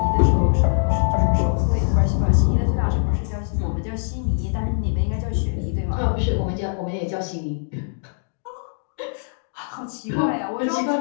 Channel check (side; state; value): right; silent; digital silence